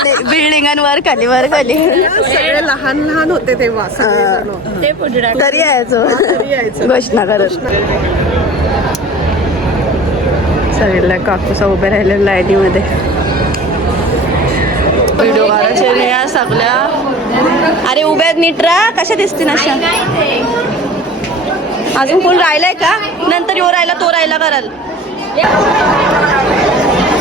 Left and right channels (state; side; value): normal; both; correlation 0.39